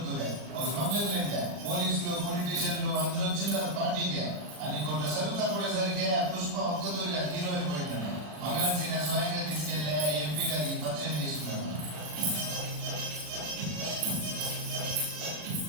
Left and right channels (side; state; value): left; late; 40 ms